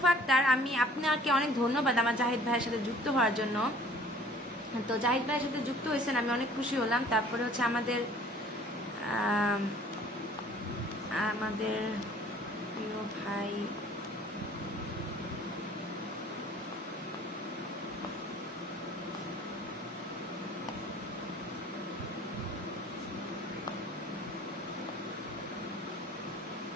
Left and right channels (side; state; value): both; normal; correlation 0.51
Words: আক্তার। আমি আপনাকে অনেক ধন্যবাদ আমার জাহিদ ভাইয়ের সাথে যুক্ত হওয়ার জন্য। তো জাহিদ ভাইয়ের সাথে যুক্ত হয়েছেন, আমি অনেক খুশি হলাম। তারপরে হচ্ছে আমাদের প্রিয় ভাই